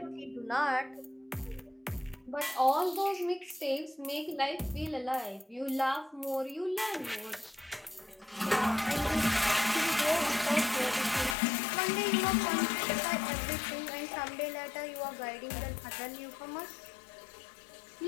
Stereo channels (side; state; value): right; drops out; at 11.4 s